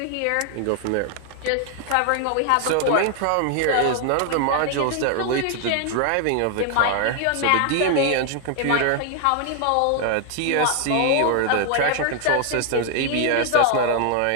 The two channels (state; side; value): different; both; correlation 0.00